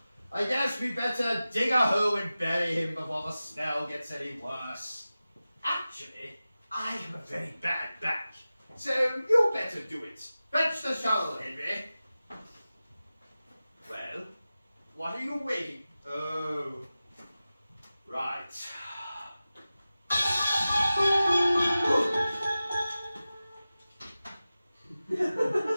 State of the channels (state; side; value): inverted; both; correlation -0.95